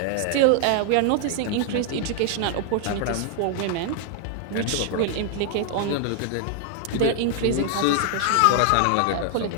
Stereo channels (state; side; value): different; both; correlation 0.00